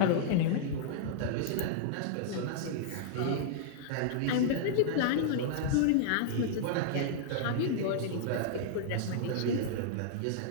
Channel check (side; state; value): both; different; correlation -0.01